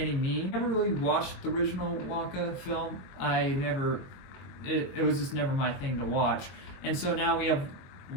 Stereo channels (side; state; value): right; late; 22 ms